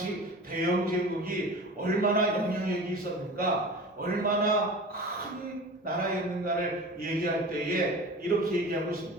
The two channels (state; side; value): normal; both; correlation 0.36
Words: 대영 제국이 얼마나 영향력이 있었는가, 얼마나 큰 나라였는가를 얘기할 때에 이렇게 얘기하고